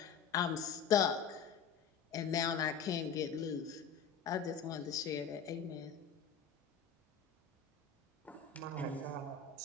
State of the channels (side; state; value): right; quieter; 6.7 dB